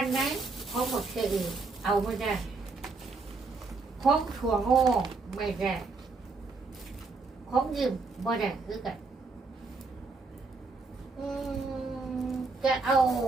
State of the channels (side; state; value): left; quieter; 4.0 dB